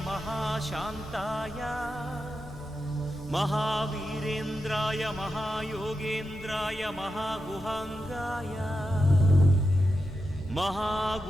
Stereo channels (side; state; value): both; normal; correlation 0.88